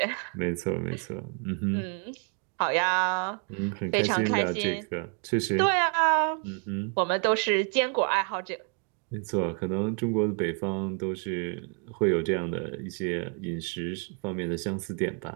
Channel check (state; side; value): quieter; left; 39.9 dB